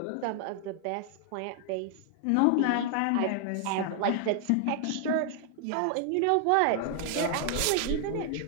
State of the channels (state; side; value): different; both; correlation 0.00